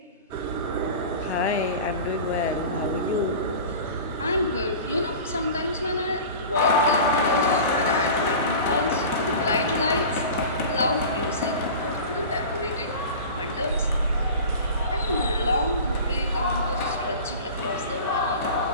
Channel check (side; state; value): both; inverted; correlation -0.35